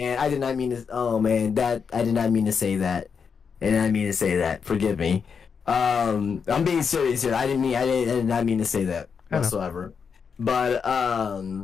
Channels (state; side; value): quieter; right; 6.2 dB